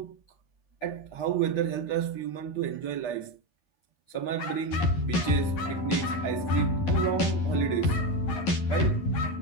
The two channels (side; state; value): right; late; 11 ms